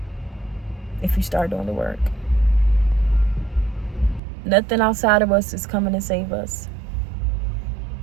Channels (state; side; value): drops out; left; at 4.2 s